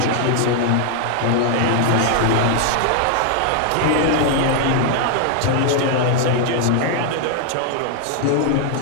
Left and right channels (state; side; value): different; both; correlation 0.00